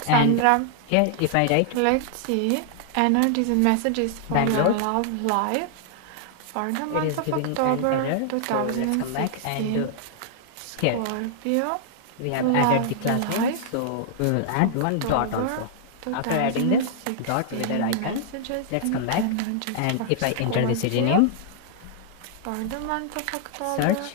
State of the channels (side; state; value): both; different; correlation -0.01